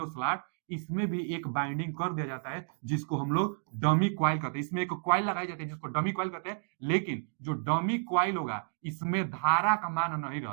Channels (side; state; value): left; silent; digital silence